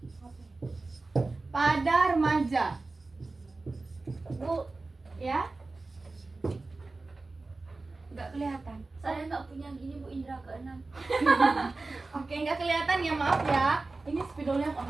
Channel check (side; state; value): left; quieter; 3.5 dB